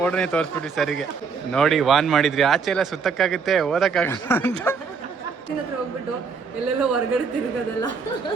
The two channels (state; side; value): quieter; left; 5.4 dB